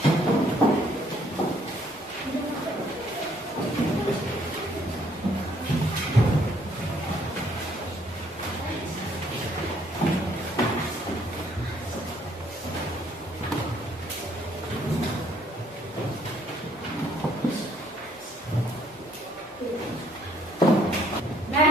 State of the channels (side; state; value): both; normal; correlation 0.65